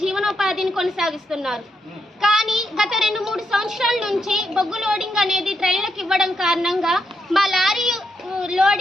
జీవనోపాధిని కొనసాగిస్తున్నారు. కానీ గత 2-3 సంవత్సరాల నుంచి బొగ్గు లోడింగ్ అనేది ట్రైన్లకు ఇవ్వడం కారణంగా మా లారీ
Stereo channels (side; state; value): both; normal; correlation 0.81